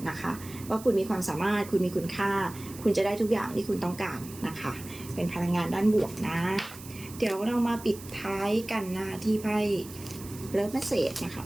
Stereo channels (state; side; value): noise; right; hiss, 16 dB below the sound